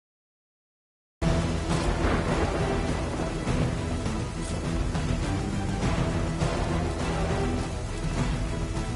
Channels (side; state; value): both; identical; correlation 1.00